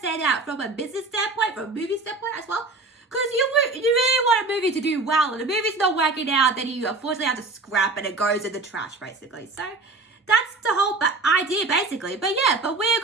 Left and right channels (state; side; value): quieter; left; 3.5 dB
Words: that from a business standpoint, from a movie standpoint as well. Because you really want a movie to do well, and the movie's not working out, then you unfortunately have to scrap and it goes in the trash, basically. So that's the whole idea, basically. But we're